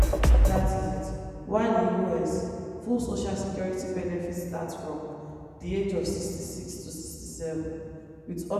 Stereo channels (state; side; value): identical; both; correlation 1.00